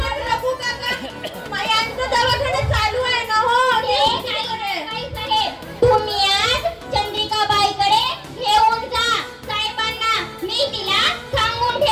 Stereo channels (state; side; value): identical; both; correlation 1.00